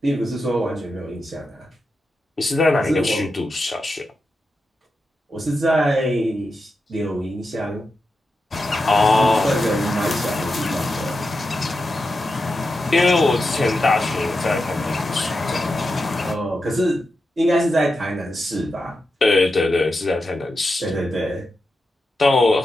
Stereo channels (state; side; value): normal; both; correlation 0.89